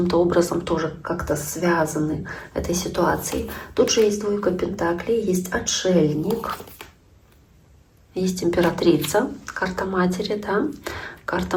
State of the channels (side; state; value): both; identical; correlation 1.00